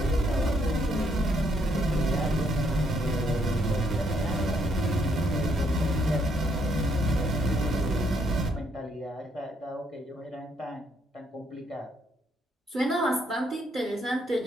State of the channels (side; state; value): both; normal; correlation 0.72